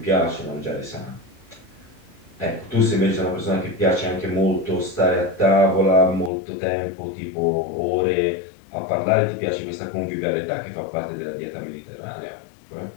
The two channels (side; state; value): right; drops out; at 6.3 s